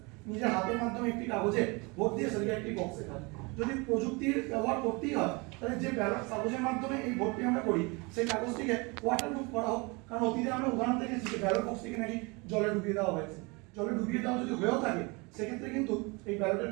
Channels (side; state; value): left; quieter; 27.9 dB